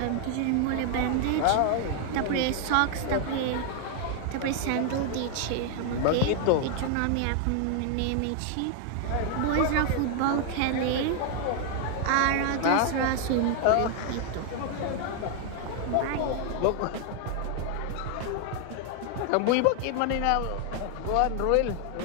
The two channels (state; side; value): different; both; correlation 0.00